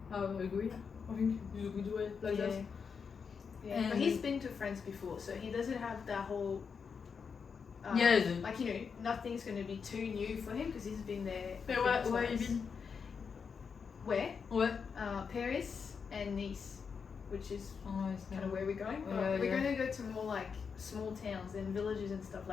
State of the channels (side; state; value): right; quieter; 6.0 dB